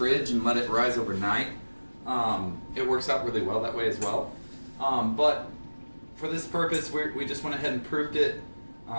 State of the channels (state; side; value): inverted; both; correlation -1.00